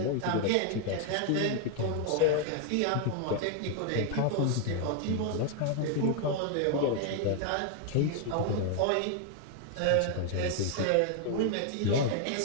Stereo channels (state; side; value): different; both; correlation 0.00